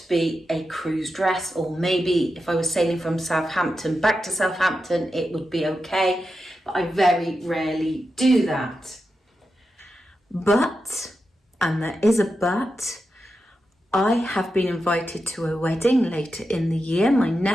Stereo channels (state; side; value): normal; both; correlation 0.89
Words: be a cruise dress, or maybe if I was sailing from Southampton back to Southampton, it would be okay, but I very rarely do that. But, and there is a but, I have been invited to a wedding later in the year, my